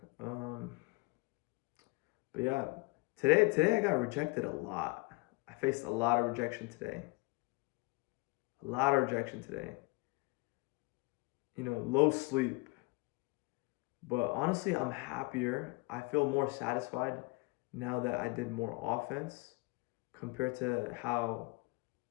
But yeah, today I got rejected a lot. I faced a lot of rejection today. A lot of rejection today. Low sleep. But honestly, I'm happier. I feel more satisfied now that I did more offense compared to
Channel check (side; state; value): right; quieter; 25.8 dB